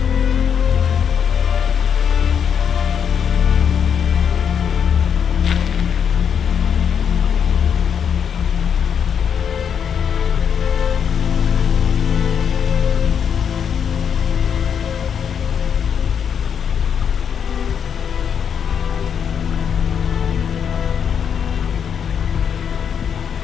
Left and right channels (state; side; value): quieter; right; 7.6 dB